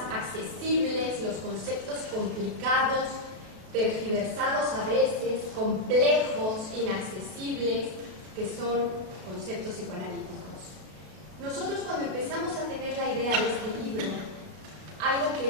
accesibles los conceptos complicados, tergiversados a veces, complejos, inaccesibles, que son conceptos psicoanalíticos. Nosotros cuando empezamos a tener la idea de este libro, algo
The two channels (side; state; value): left; late; 33 ms